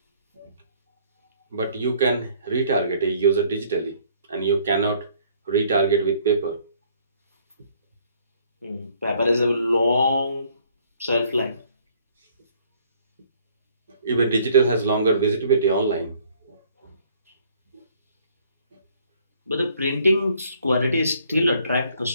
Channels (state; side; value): inverted; both; correlation -0.61